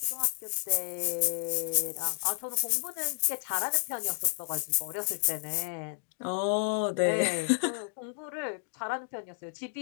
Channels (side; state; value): right; silent; digital silence